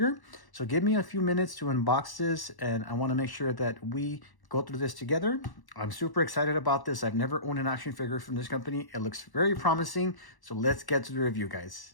So give me a few minutes to unbox this, and I want to make sure that we go through this together. I'm super excited about this. I've never owned an action figure from this company. It looks very promising. So let's get to the review, guys.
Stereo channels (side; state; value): right; late; 1.1 ms